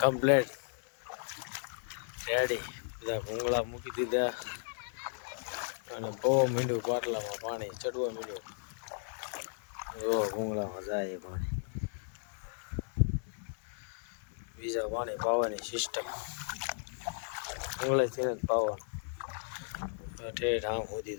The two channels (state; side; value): silent; right; 54 dB below the other